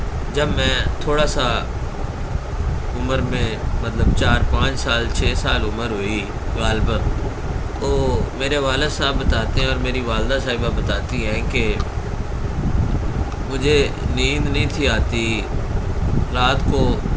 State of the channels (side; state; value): both; identical; correlation 1.00